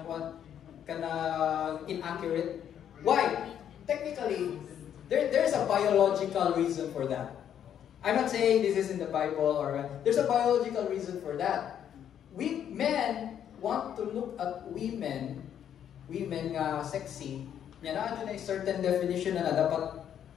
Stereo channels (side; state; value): right; quieter; 9.5 dB